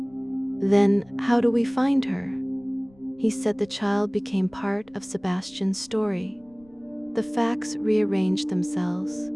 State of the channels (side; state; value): left; noise; rumble, 29 dB below the sound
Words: "Then how do we find her?" "He said the child became part of Sebastian's story." The facts rearranged themselves.